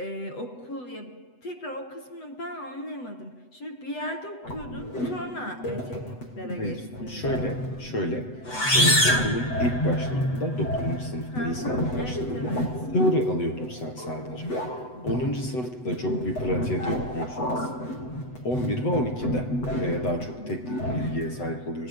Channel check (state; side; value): late; right; 8.0 ms